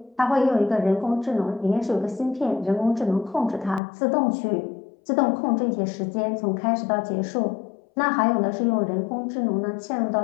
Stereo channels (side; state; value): right; drops out; at 3.8 s